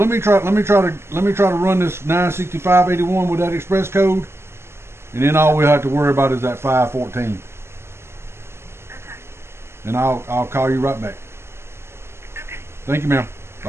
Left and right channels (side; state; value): left; late; 0.12 ms